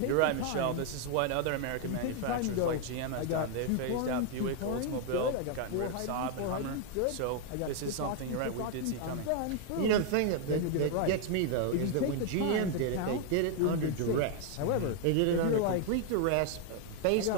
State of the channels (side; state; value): both; different; correlation 0.00